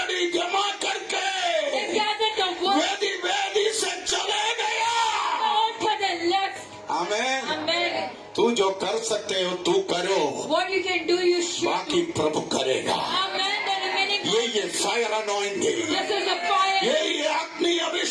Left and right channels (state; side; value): identical; both; correlation 1.00